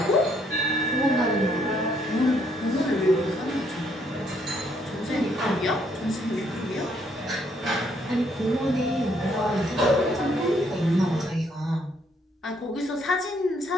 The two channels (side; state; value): both; normal; correlation 0.69